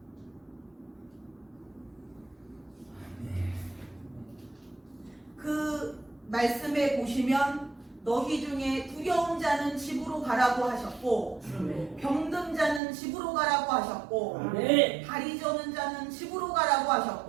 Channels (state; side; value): drops out; left; at 12.8 s